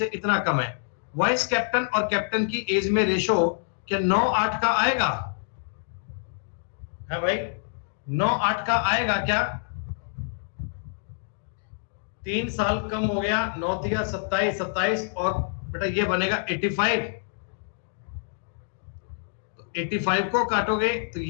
इतना कम है। वाइस कैप्टन और कैप्टन की एज में रेशो क्या 9-8 का आएगा? है भाई 9-8 का आएगा क्या? 3 साल कम हो गया, 9 3 27 27, और बेटा ये बनेगा 85। तो 85 को काटोगे तो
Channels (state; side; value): silent; right; digital silence